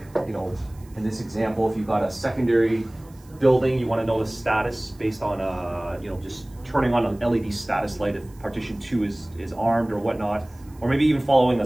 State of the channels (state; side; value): noise; right; hiss, 28 dB below the sound